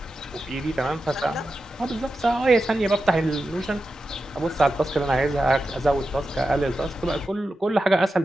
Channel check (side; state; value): both; normal; correlation 0.91